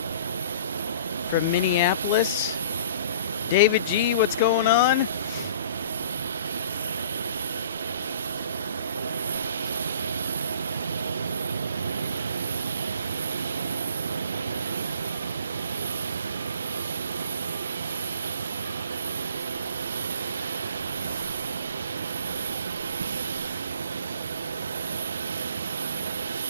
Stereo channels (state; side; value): inverted; both; correlation -0.48